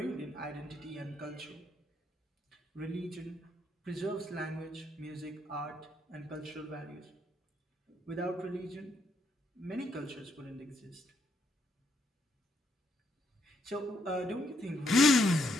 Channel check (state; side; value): normal; both; correlation 0.75